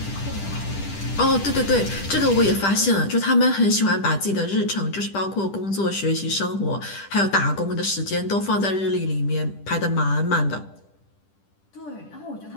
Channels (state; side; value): late; right; 10 ms